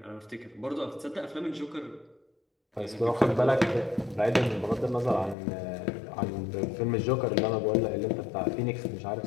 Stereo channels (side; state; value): right; drops out; at 5.4 s